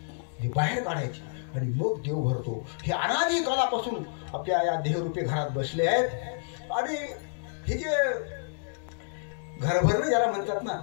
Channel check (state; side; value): silent; right; digital silence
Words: ही बाहेर काढायची आणि मग देव भरतो. हे अनादी काळापासून आपल्या या देहरूपी घरात बसले आहेत. आणि हे जे घर भरणं ज्याला म्हणतात ना,